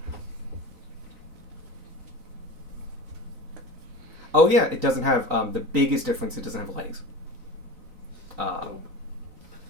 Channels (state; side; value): late; left; 3.9 ms